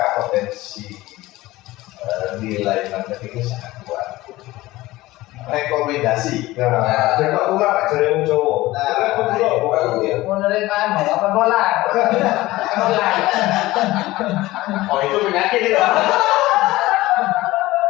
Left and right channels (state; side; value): quieter; right; 18.1 dB